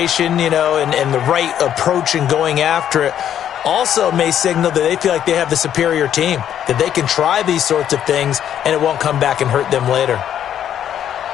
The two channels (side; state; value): right; quieter; 10.1 dB